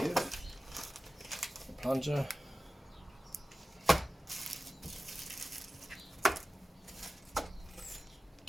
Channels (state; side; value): normal; both; correlation 0.95